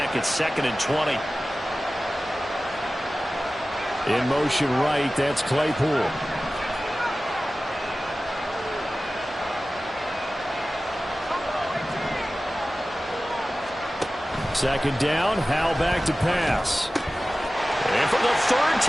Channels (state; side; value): normal; both; correlation 0.96